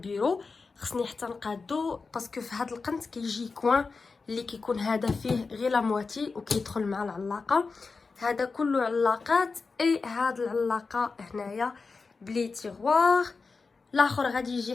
خصني حتى نقادو باسكو في هاد القنت كيجي كوين اللي كيكون هذا فيه غير لا مواتي وكيدخل مع العلاقه. هذا كله علاقات اي هاد العلاقه هنايا بلي تيغوار. الاخر غادي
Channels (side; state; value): right; quieter; 4.4 dB